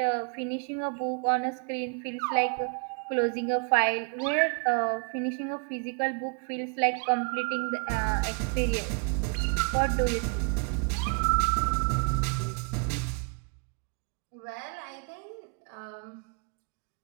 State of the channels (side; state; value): left; quieter; 39.6 dB